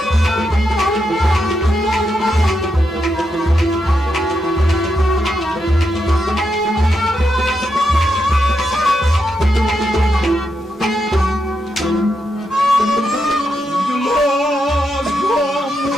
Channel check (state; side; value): normal; both; correlation 0.84